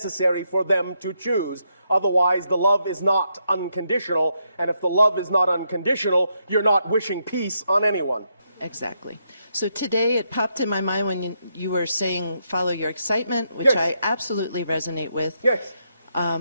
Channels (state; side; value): inverted; both; correlation -0.79